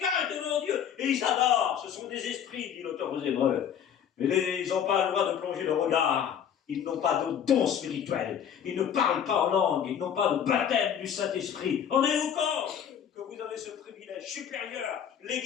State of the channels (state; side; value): quieter; right; 8.7 dB